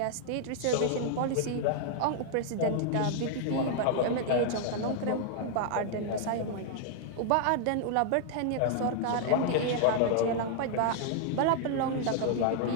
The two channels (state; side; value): different; both; correlation -0.01